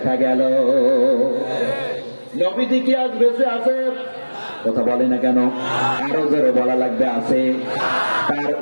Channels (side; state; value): both; inverted; correlation -1.00